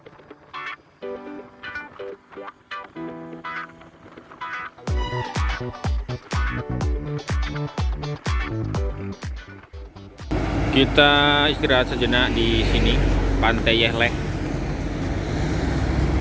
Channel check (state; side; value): identical; both; correlation 1.00